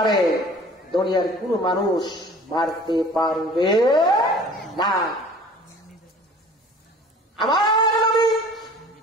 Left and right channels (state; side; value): normal; both; correlation 0.47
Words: দুনিয়ার কোন মানুষ মারতে পারবে না। আমার নবী